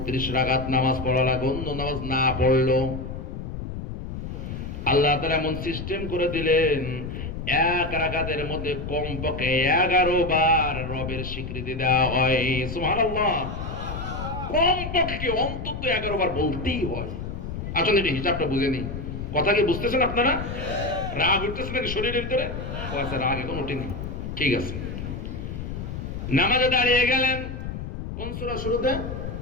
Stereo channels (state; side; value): noise; left; rumble, 7 dB below the sound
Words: রাকাত নামাজ পড়া লাগে। অন্য নামাজ না পড়লো আল্লাহ তাআলা এমন সিস্টেম করে দিলেন, এক রাকাতের মধ্যে কমপক্ষে 11 বার রবের স্বীকৃতি দেওয়া হয়। সুবহানাল্লাহ। কমপক্ষে অন্তত 11 বার বলতেই হয়। আসলে এটা হিসাবটা বুঝে নেই। কথা কি বুঝতেছেন আপনারা? রাগ উঠতেছে নাকি শরীরের ভিতরে? আচ্ছা, রাগ এখন উঠেনি, ঠিক আছে। নামাজে দাঁড়িয়ে গেলেন, কোন সূরা শুরুতে?